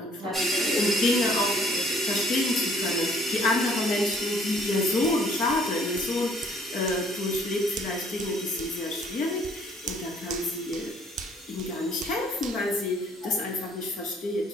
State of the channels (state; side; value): normal; both; correlation 0.60